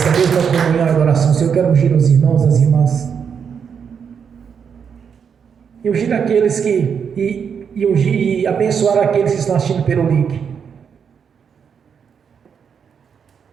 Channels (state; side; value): quieter; left; 7.0 dB